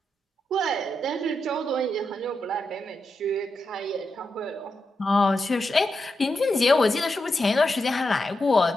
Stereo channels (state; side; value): normal; both; correlation 0.86